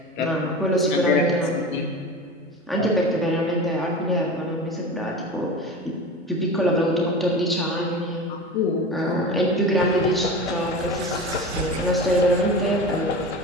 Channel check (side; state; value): both; normal; correlation 0.31